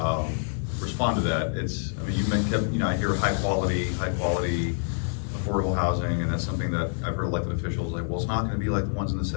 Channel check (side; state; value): right; silent; 60 dB below the other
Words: respond to that. It's, I mean, I hear high quality, affordable housing, and that's something that I've heard elected officials like, well, it's not gonna be like the ones in the